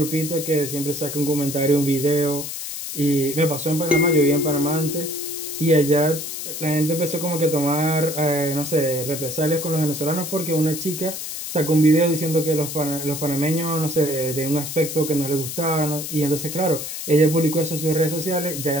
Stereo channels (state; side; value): noise; left; hiss, 7 dB below the sound